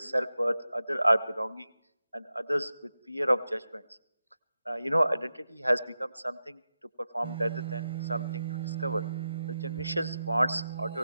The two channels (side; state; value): both; inverted; correlation -0.90